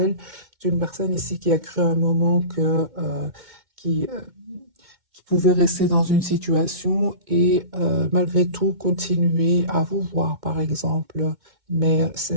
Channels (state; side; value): late; left; 2.2 ms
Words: C'est une personne ici qui a cru à un moment qui, euh, qui pouvait rester dans une situation et malgré tout continuer à vous voir, par exemple. Mais ce